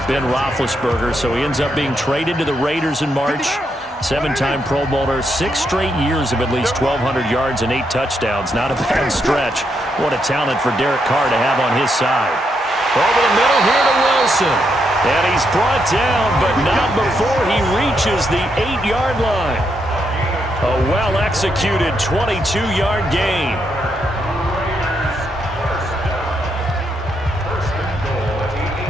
Ben Roethlisberger. So he ends up being traded to the Raiders in March. 7-time Pro Bowler, 6 straight years of at least 1,200 yards and 8 touchdowns. Not a bad stretch. What a talent for Derek Carr to have on his side. Over the middle here to Wilson. And he's brought down, but not before he reaches the 8-yard line. A well-executed 22-yard gain.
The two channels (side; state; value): both; normal; correlation 0.79